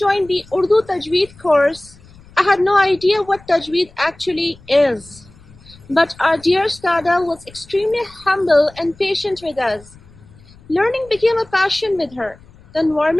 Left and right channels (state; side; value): noise; left; rumble, 24 dB below the sound